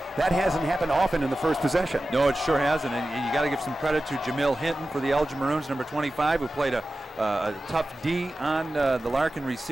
that hasn't happened often in the first possession. No, it sure hasn't, and you got to give some credit to Jamil Hinton for the Elgin Maroons, number 25, who played a tough D on the Larkin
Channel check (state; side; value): normal; both; correlation 0.94